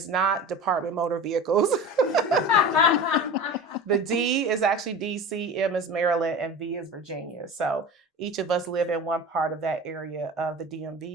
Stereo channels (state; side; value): normal; both; correlation 0.33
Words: not Department Motor Vehicles. The D is actually DC, M is Maryland, and V is Virginia. So each of us live in one part of that area of the